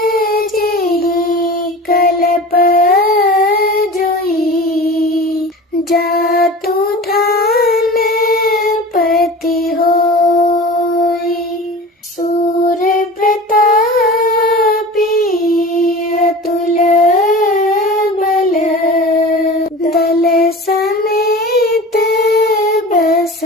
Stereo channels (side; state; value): both; normal; correlation 0.36